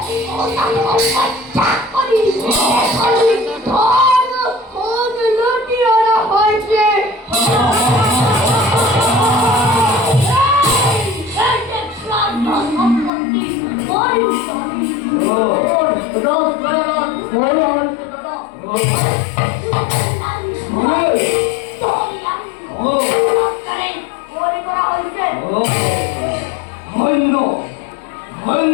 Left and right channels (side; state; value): right; drops out; at 13.1 s